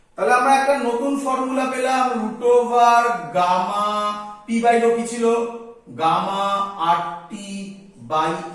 তাহলে আমরা একটা নতুন ফর্মুলা পেলাম root over gamma P by rho কি ছিল গামা 8টি বাই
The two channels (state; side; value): identical; both; correlation 1.00